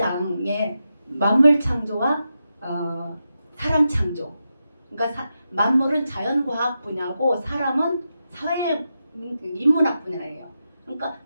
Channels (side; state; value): both; inverted; correlation -0.88